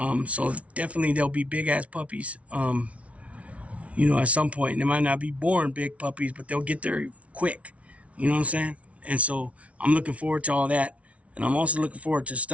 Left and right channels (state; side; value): late; left; 0.064 ms